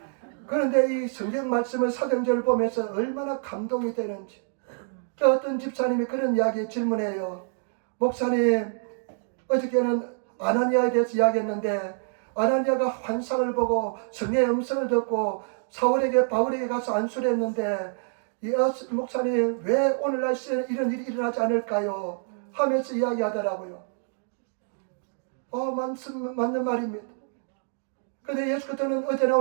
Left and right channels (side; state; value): left; silent; digital silence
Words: 그런데 이 성경 말씀을 사도행전을 보면서 얼마나 감동이 되는지. 어떤 집사님이 그런 이야기 질문해요. 목사님, 어저께는 아나니아에 대해서 이야기했는데 아나니아가 환상을 보고 성령의 음성을 듣고 바울에게 가서 안수를 했는데 목사님 왜 오늘날 시대에 이런 일이 일어나지 않을까요? 하면서 이야기하더라고요. 맞는 말입니다. 그런데 예수 그리스도는 어제나